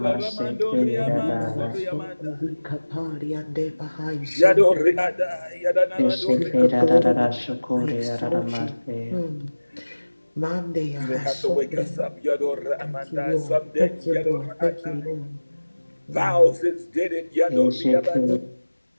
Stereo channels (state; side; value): inverted; both; correlation -1.00